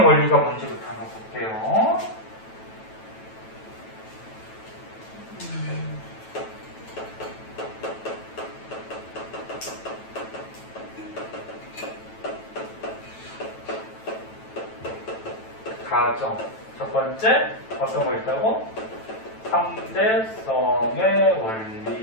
원리가 뭔지부터 한번 볼게요. 가정. 첫 번째, 어떤 거 있다고? 상대성의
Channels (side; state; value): right; late; 9.1 ms